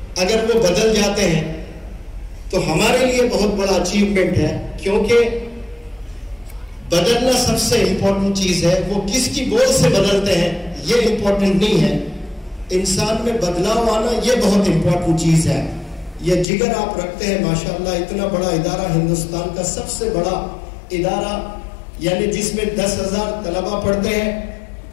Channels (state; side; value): drops out; right; at 16.4 s